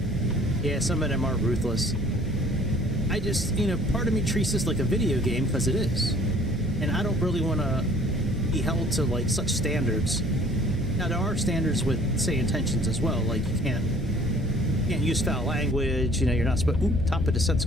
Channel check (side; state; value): both; normal; correlation 0.53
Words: Yeah, some of them are ruthless. I just, you know, part of me treats this like a video game because it is. And I don't really want to be held to like such standards. Now there are standards with Sayintentions as well, like you can't use foul language, you know, you're not supposed. Oop, top of descent's